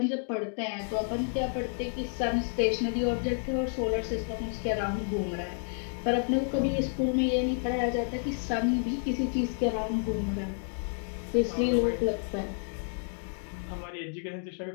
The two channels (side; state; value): right; silent; 55 dB below the other